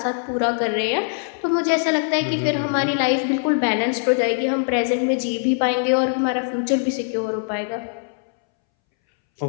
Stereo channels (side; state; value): right; silent; 63 dB below the other